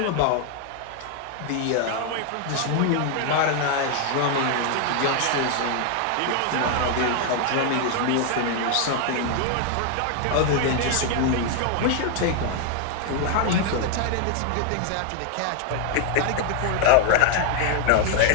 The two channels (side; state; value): both; different; correlation 0.00